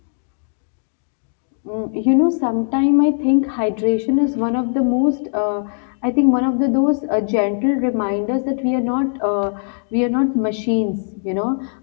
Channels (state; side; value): silent; right; digital silence